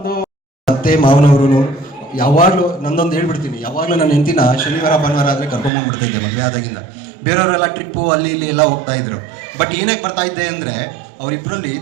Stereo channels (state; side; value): drops out; left; at 5.7 s